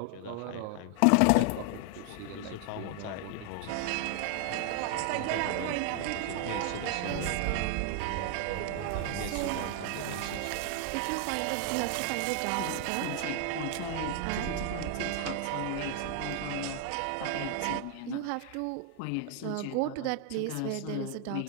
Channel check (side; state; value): both; different; correlation 0.00